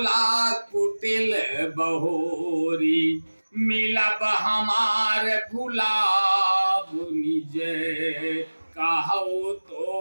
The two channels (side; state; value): both; inverted; correlation -1.00